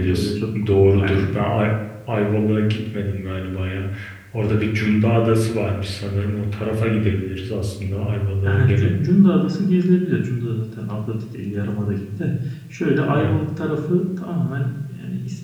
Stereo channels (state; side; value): identical; both; correlation 1.00